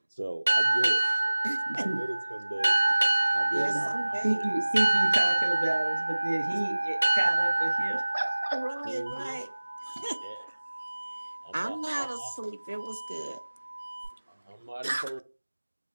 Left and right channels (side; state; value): both; inverted; correlation -1.00